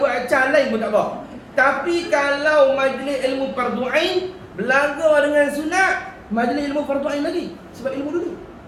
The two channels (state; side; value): identical; both; correlation 1.00